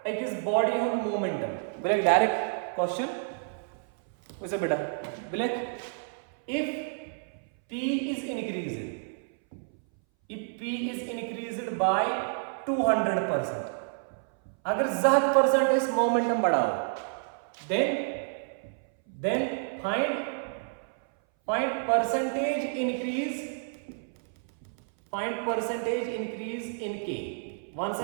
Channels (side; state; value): left; silent; 58 dB below the other